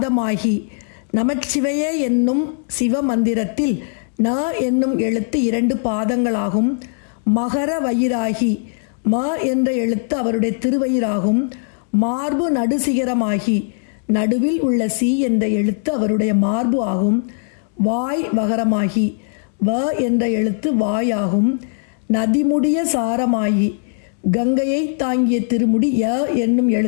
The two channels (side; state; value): right; silent; digital silence